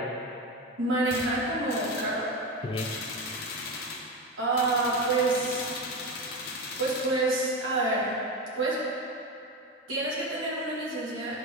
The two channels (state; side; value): normal; both; correlation 0.19